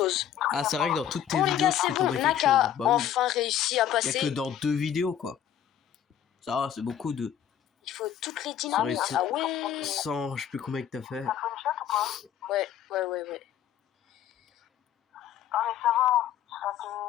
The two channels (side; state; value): right; quieter; 9.8 dB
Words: Ah, c'est vrai que dans toutes tes Bon les vidéos, gars, tu c'est fais bon. tomber quelque Nak chose. a Bah oui. enfin réussi à Il y a passer. que dans 2 vidéos, quoi. Ça va, c'est beaucoup de... Il faut toutes les Ça dynamites. réussit. Ah ouais. 100, je sais plus combien que t'as fait. T'as fait une shot ou pas? Ouais. Ah mais ça va. Ça te...